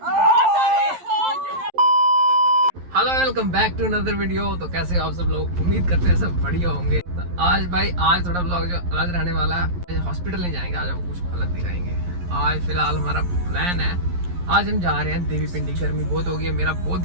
Hello welcome back to another video. तो कैसे हो आप सब लोग? उम्मीद करते हैं सब बढ़िया होंगे। तो आज थोड़ा ब्लॉग जो अलग रहने वाला है। हॉस्पिटल नहीं जाएंगे, आज आपको कुछ अलग दिखाएंगे। आज फिलहाल हमारा प्लान है, आज हम जा रहे हैं देवी पिंडी। गर्मी बहुत हो गई है, मेरा बहुत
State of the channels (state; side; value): late; left; 11 ms